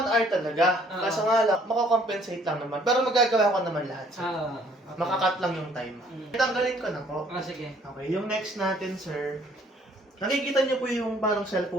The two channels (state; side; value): normal; both; correlation 0.61